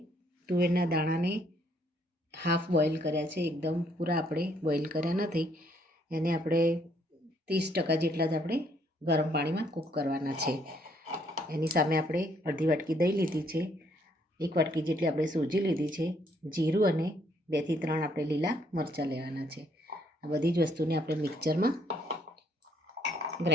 તુવેરના દાણાને હાફ બોઇલ કર્યા છે, એકદમ પૂરા આપણે બોઇલ કર્યા નથી. એને આપણે 30% જેટલા જ આપણે ગરમ પાણીમાં કૂક કરવાના છે. એની સામે આપણે અડધી વાટકી દહીં લીધી છે, 1 વાટકી જેટલી આપણે સોજી લીધી છે, જીરું અને 2 થી 3 આપણે લીલા મરચાં લેવાના છે. આ બધી જ વસ્તુને આપણે મિક્સરમાં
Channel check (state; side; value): normal; both; correlation 0.68